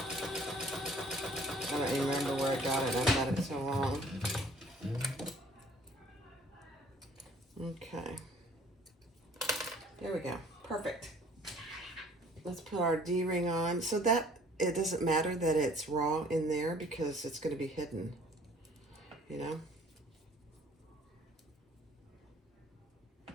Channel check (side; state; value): both; normal; correlation 0.55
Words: I don't even remember where I got it. I've had it so long. Okay. There we go. Perfect. Let's put our D-ring on. So that it doesn't matter that it's raw in there because it's going to be hidden, you know?